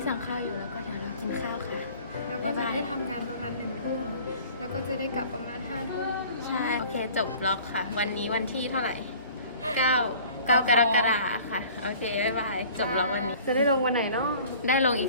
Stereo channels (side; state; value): both; inverted; correlation -0.48